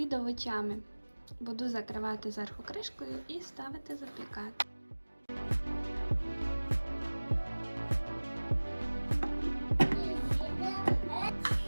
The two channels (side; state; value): both; inverted; correlation -1.00